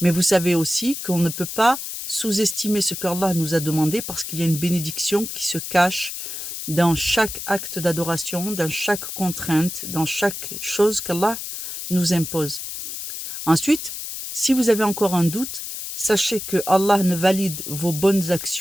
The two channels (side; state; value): left; noise; hiss, 7 dB below the sound